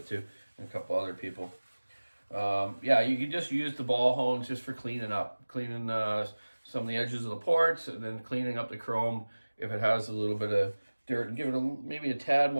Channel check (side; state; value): both; inverted; correlation -1.00